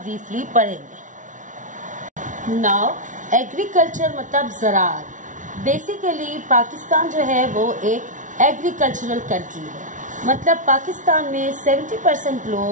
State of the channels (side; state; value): left; late; 0.37 ms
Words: पढ़ेंगे। नाउ एग्रीकल्चर मतलब ज़राअत। बेसिकली पाकिस्तान जो है वो एक एग्रीकल्चरल कंट्री है। मतलब पाकिस्तान में 70%